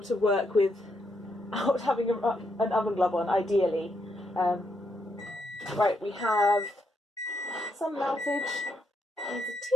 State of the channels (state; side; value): normal; both; correlation 0.78